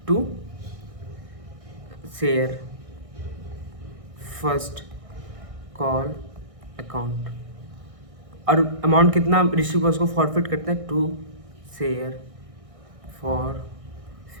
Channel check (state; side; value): late; left; 1.6 ms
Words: to share first call account, और अमाउंट कितना रिसीव हुआ उसको फॉरफिट करते हैं टू शेयर